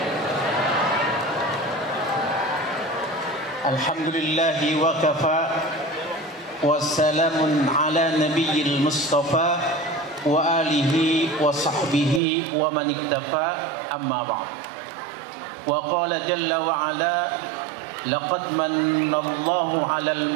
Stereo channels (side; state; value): left; drops out; at 12.2 s